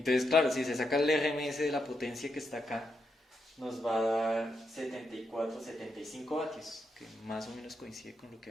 claro, si se saca el RMS de la potencia que está acá, nos va a dar 74, 75 vatios, que más o menos coincide con lo que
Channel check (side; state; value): both; normal; correlation 0.82